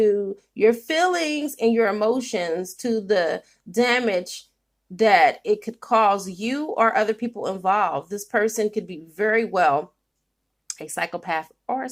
your feelings and your emotions, to the damage that it could cause you or other people involved. This person could be very well a psychopath or a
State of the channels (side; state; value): both; identical; correlation 1.00